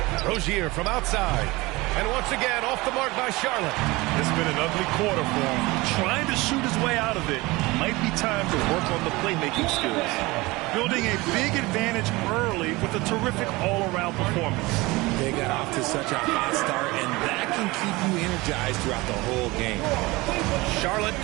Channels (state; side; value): quieter; left; 21.9 dB